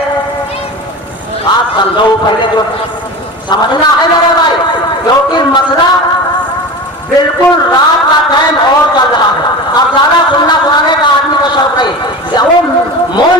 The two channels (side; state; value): both; normal; correlation 0.30